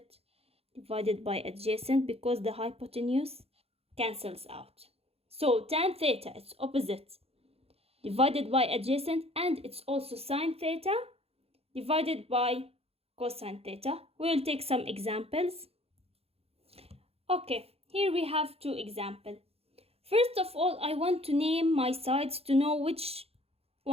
divided by adjacent, because the hypotenuse cancels out. So tan theta, it's opposite divided by adjacent, and it's also sine theta divided by cosine theta. We will take some examples. Okay, here we have two examples. First of all, I want to name my sides to know which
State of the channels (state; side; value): late; left; 0.29 ms